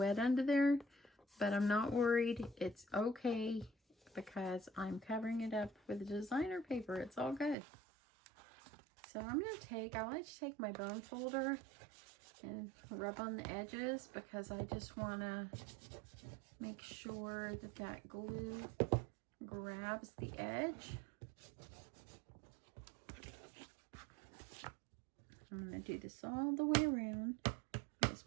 under there, but I'm not worried. It's okay because I'm covering it up with designer paper. It's all good. So I'm going to take, I like to take my bone folder and rub on the edges because I just want to make sure that that glue grabs the edge. I'm going to do this all the way around. This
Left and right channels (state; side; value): drops out; left; at 7.6 s